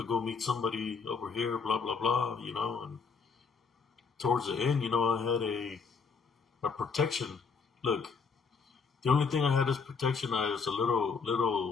go meet somebody over here, blah blah blah," you know. And towards the end, I had a protection. Look, the only thing I had as protection is a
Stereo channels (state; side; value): quieter; right; 5.3 dB